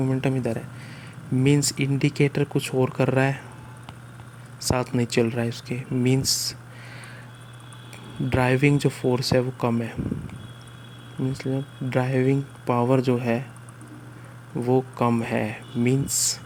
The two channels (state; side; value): identical; both; correlation 1.00